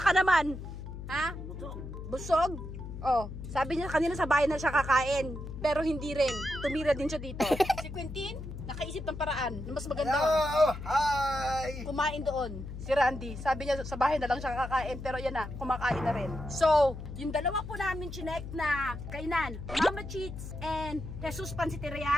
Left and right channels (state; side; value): noise; left; hum, 9 dB below the sound